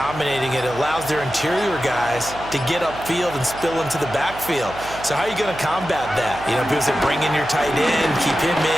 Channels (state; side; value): noise; right; hum, 15 dB below the sound